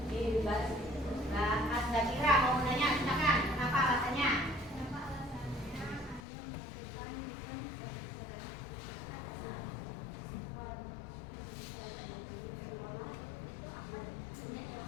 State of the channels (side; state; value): right; drops out; at 6.2 s